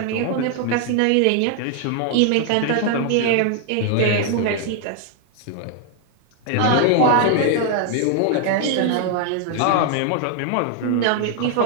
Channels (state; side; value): different; both; correlation 0.00